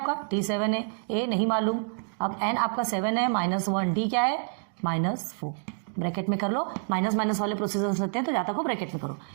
T7 है, A नहीं मालूम, अब n आपका 7 है, -1 D क्या है, -4, ब्रैकेट में कर लो, माइनस माइनस वाले प्रोसीजर होते हैं तो जहाँ तक हो ब्रैकेट में करो।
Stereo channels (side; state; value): left; silent; digital silence